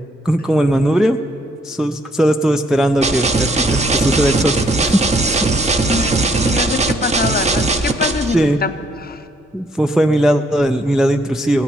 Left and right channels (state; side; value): normal; both; correlation 0.69